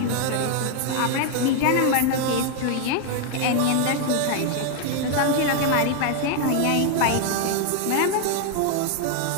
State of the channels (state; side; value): different; both; correlation 0.00